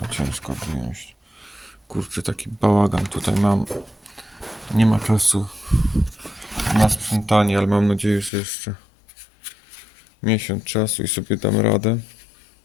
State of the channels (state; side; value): drops out; right; at 8.3 s